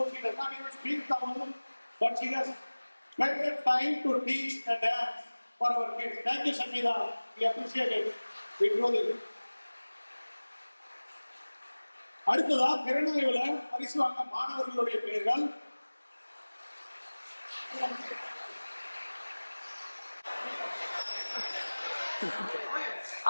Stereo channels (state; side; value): inverted; both; correlation -1.00